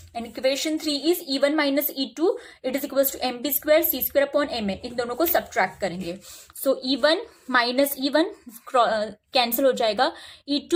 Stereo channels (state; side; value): identical; both; correlation 1.00